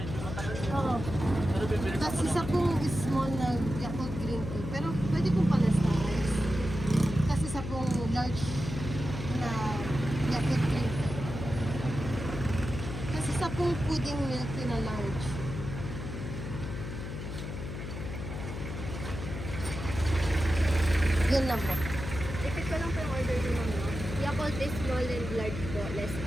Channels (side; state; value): left; noise; hum, 7 dB below the sound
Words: matagal. oo. Pero bibili Tapos isa pong small na Yakult green tea. Pero pwede pong palas-talas. Tapos isa pong large na Yakult green tea. Tapos isa pong pudding milk tea na large. Yun lang po. Repeat ko lang po yung order niyo, ma'am, no? Yakult is small and large po, less